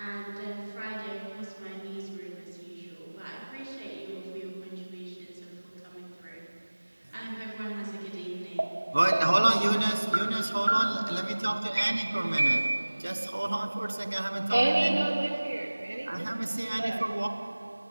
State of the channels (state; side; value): inverted; both; correlation -1.00